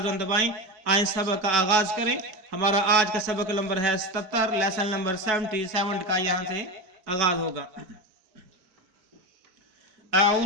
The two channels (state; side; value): late; left; 4.6 ms